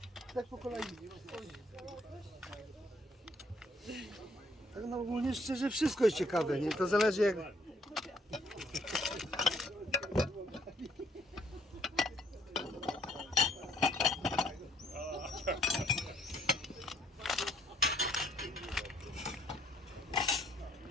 Tak po kolei. Tak no ogólnie szczerze wszystko jest ciekawe, nie? To zależy jak...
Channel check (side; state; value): both; normal; correlation 0.65